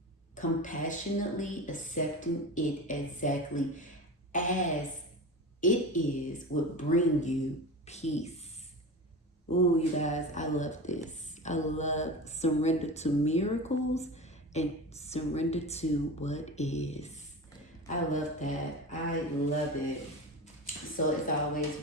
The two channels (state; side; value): normal; both; correlation 0.28